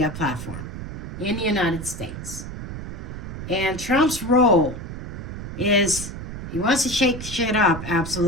platform in the United States. And Trump's role is he wants to shake shit up,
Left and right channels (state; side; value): noise; right; rumble, 8 dB below the sound